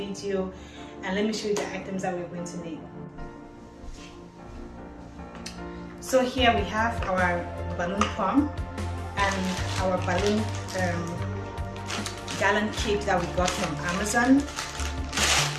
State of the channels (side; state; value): both; identical; correlation 1.00